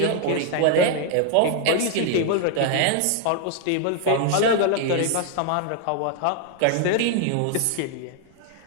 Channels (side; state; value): both; different; correlation 0.00